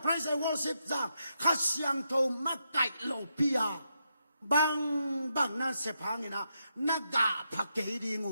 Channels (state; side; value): inverted; both; correlation -0.83